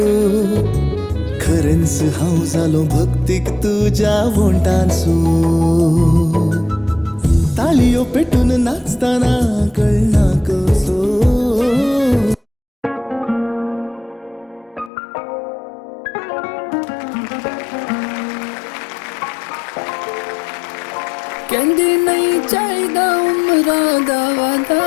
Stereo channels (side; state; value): right; drops out; at 14.9 s